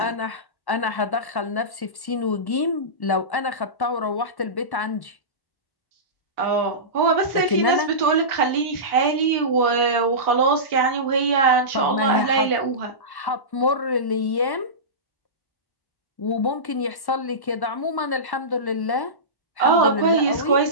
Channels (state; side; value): late; right; 1.1 ms